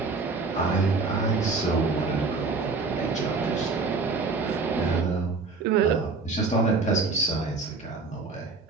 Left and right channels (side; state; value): left; quieter; 4.2 dB